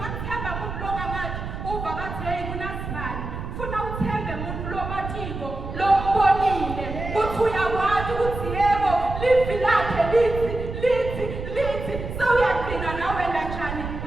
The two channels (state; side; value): noise; right; rumble, 7 dB below the sound